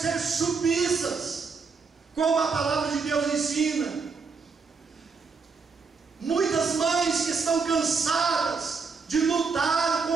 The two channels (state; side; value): quieter; left; 5.0 dB